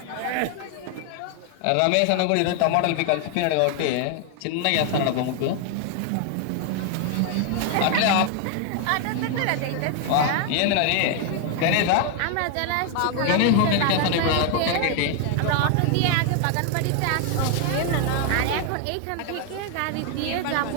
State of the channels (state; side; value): different; both; correlation 0.00